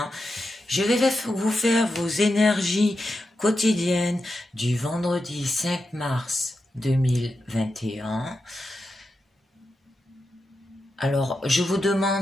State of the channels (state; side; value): normal; both; correlation 0.88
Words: Je vais vous faire vos énergies quotidiennes du vendredi 5 mars 2021. Alors, je vous